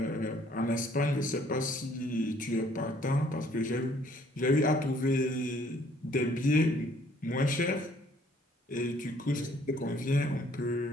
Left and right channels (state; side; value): normal; both; correlation 0.61